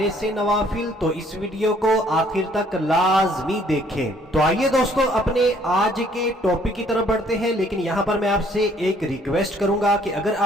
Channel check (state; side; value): normal; both; correlation 0.62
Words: سے نوافل تو اس ویڈیو کو آخر تک لازمی دیکھیں۔ تو آئیے دوستو اپنے آج کے ٹاپک کی طرف بڑھتے ہیں، لیکن یہاں پر میں آپ سے ایک ریکویسٹ کروں گا کہ اگر